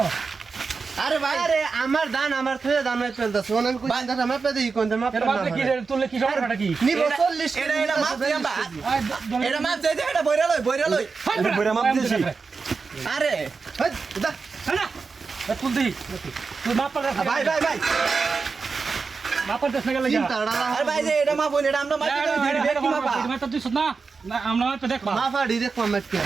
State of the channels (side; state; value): left; quieter; 4.7 dB